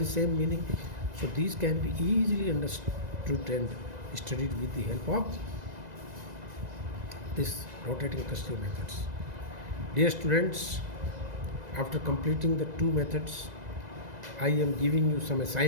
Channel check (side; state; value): left; late; 1.9 ms